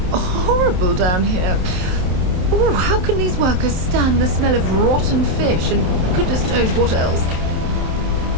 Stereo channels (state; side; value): late; left; 27 ms